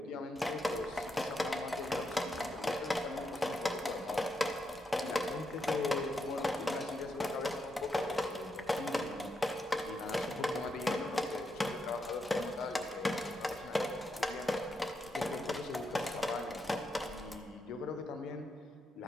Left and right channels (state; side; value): normal; both; correlation 0.82